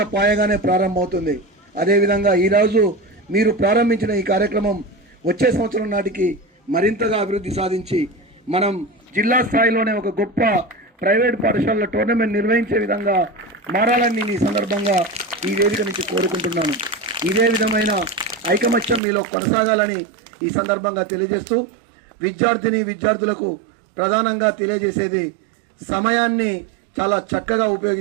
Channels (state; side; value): drops out; left; at 19.0 s